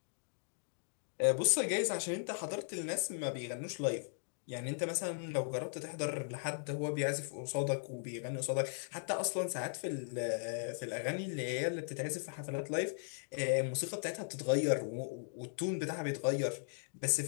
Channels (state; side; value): silent; right; digital silence